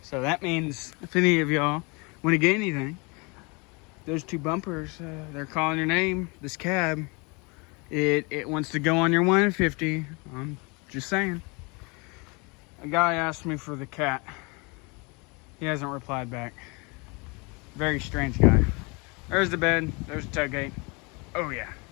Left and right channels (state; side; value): quieter; right; 29.2 dB